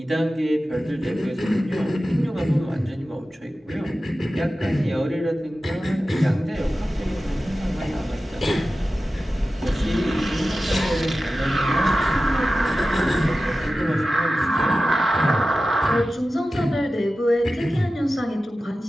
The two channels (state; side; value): normal; both; correlation 0.94